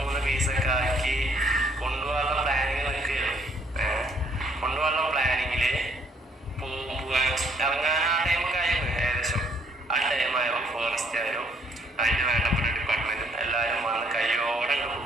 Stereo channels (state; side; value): normal; both; correlation 0.66